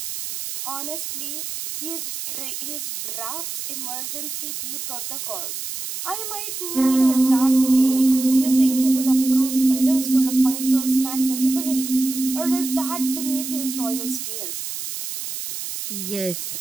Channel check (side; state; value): right; noise; hiss, 6 dB below the sound